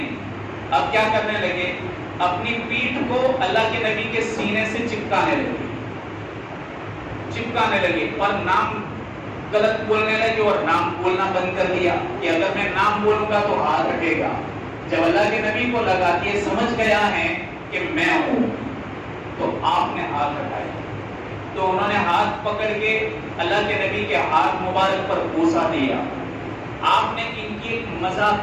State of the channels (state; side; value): identical; both; correlation 1.00